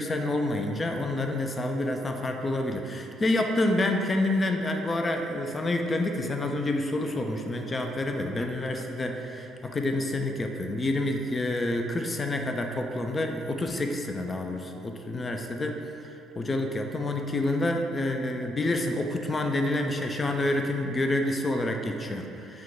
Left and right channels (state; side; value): normal; both; correlation 0.79